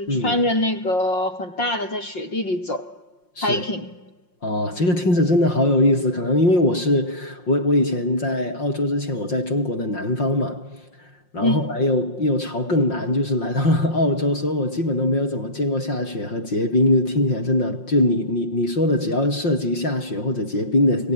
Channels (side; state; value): right; late; 5.6 ms